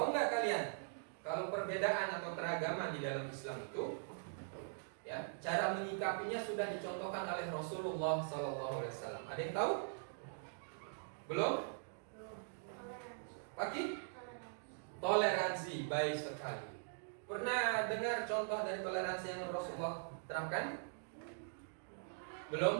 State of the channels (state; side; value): silent; left; digital silence